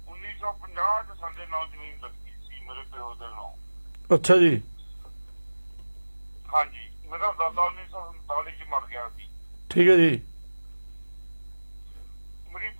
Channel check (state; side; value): inverted; both; correlation -1.00